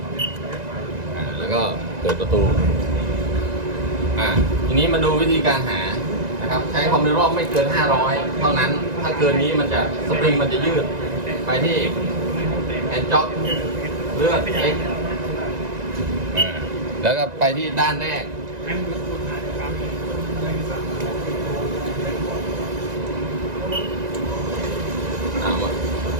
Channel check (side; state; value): left; late; 1.9 ms